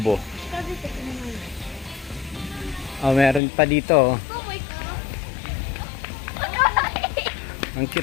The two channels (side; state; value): right; drops out; at 3.4 s